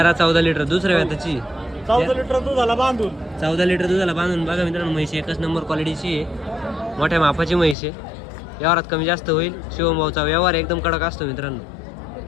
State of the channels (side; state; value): right; drops out; at 7.8 s